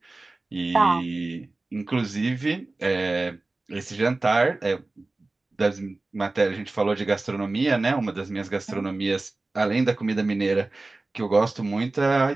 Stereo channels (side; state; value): left; quieter; 3.2 dB